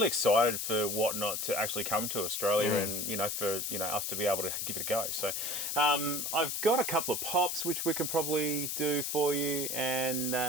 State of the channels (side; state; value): left; noise; hiss, 2 dB below the sound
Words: excited for Whatnot to actually come to Australia, and for us to be able to give it a go. So I've got a couple of pops which we can probably do for you, and